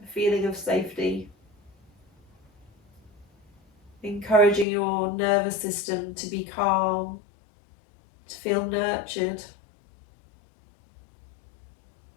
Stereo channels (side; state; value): right; drops out; at 4.7 s